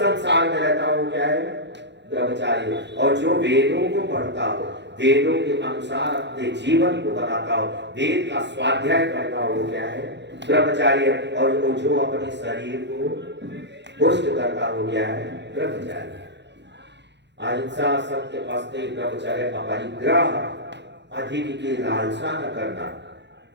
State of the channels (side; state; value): left; late; 0.51 ms